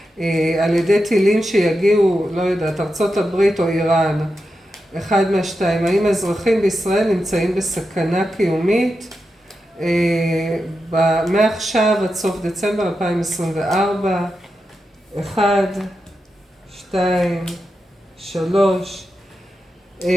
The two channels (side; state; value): both; normal; correlation 0.89